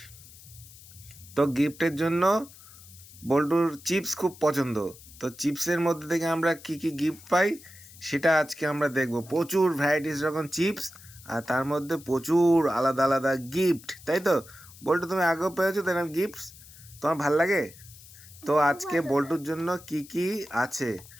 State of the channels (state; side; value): noise; left; hiss, 20 dB below the sound